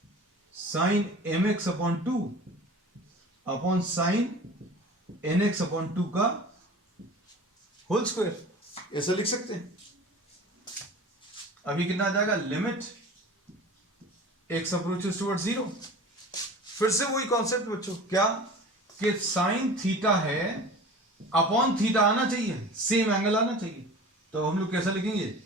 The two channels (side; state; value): both; normal; correlation 0.39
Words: sine m x upon 2 upon sine n x upon 2 का होल स्क्वायर, ऐसा लिख सकते हैं। अभी कितना आ जाएगा, लिमिट एक्स अप्रोचेस टुवर्ड्स 0, फिर से वही कॉन्सेप्ट बच्चों, क्या कि साइन थीटा है, अपॉन थीटा आना चाहिए, सेम एंगल आना चाहिए, तो हम लोग कैसा लिखेंगे,